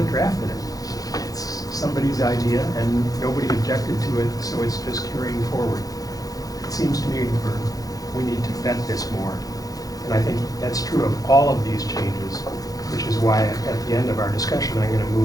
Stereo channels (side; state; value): right; late; 0.17 ms